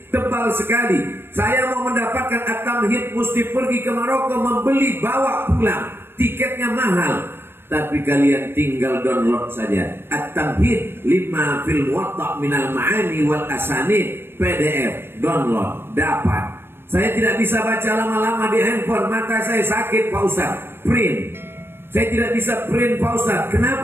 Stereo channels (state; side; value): late; left; 0.11 ms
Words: Tebal sekali. Saya mau mendapatkan At-Tamhid mesti pergi ke Maroko, membeli, bawa pulang. Tiketnya mahal. Tapi kalian tinggal download saja At-Tamhid lima fil Muwatta minal ma'ani wal asanid, PDF, download, dapat. Saya tidak bisa baca lama-lama di handphone, mata saya sakit Pak Ustaz. Print. Saya tidak bisa print Pak Ustaz.